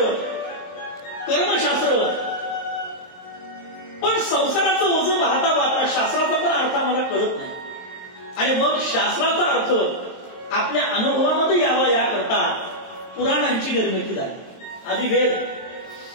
कर्मशास्त्र. पण संसाराचं ओझं वाहता वाहता शास्त्राचा पण अर्थ आम्हाला कळत नाही. आणि मग शास्त्राचा अर्थ आपल्या अनुभवामध्ये यावा याकरता पुराणांची निर्मिती झाली. आधी वेद,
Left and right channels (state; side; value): late; right; 22 ms